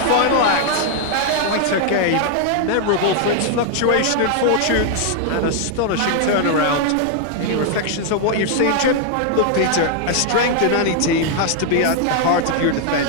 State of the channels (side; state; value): both; different; correlation 0.00